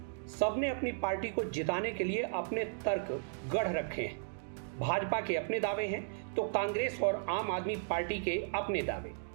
सबने अपनी पार्टी को जिताने के लिए अपने तर्क गढ़ रखे हैं। भाजपा के अपने दावे हैं तो कांग्रेस और आम आदमी पार्टी के अपने दावे।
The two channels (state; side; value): silent; left; digital silence